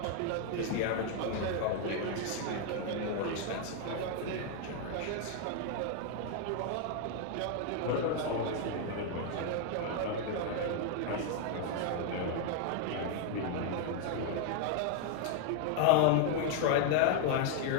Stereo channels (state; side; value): different; both; correlation 0.01